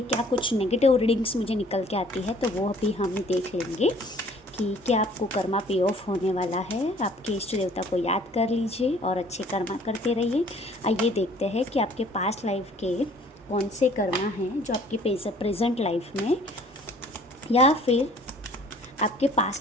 क्या कुछ नेगेटिव रीडिंग्स मुझे निकल के आती है, तो वो भी हम देख लेंगे कि क्या आपको कर्मा पे ऑफ होने वाला है। आपके इष्ट देवता को याद कर लीजिए और अच्छे कर्मा करते रहिए। आइए देखते हैं कि आपके पास्ट लाइफ के कौन से कर्मा हैं जो आपकी प्रेजेंट लाइफ में, या फिर आपके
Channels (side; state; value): both; normal; correlation 0.55